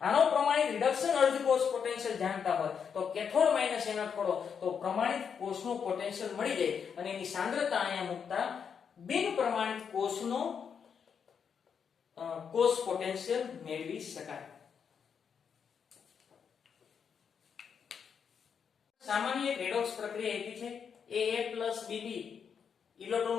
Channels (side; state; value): right; quieter; 6.9 dB